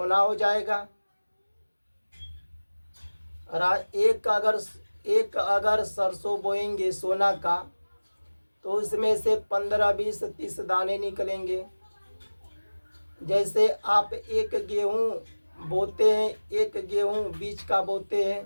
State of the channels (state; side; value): inverted; both; correlation -1.00